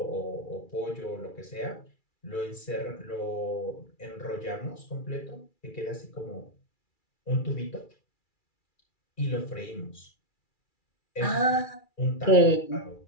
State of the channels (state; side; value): late; right; 2.3 ms